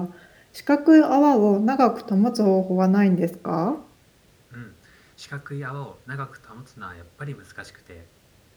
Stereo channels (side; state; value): both; identical; correlation 1.00